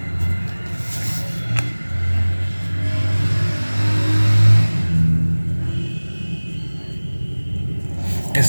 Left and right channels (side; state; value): both; inverted; correlation -1.00